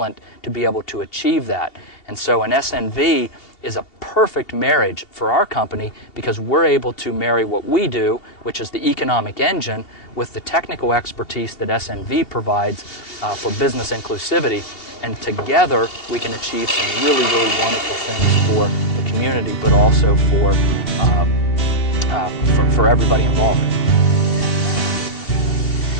to be able to achieve that. And so an SNV is a perfect marriage for our company because we're able to marry what we do, which is the economic engine, with the technical expertise that SNV provides for business inclusivity. And together we can achieve some really, really wonderful things for the community, but also for everybody involved.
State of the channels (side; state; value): right; late; 2.8 ms